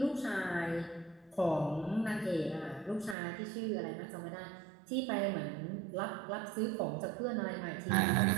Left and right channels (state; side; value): drops out; left; at 3.2 s